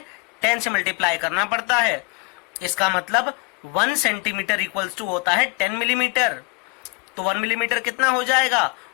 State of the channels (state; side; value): quieter; right; 30.1 dB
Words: 10 से मल्टीप्लाई करना पड़ता है। इसका मतलब 1 सेंटीमीटर इक्वल्स टू होता है 10 मिलीमीटर। तो 1 मिलीमीटर कितना हो जाएगा?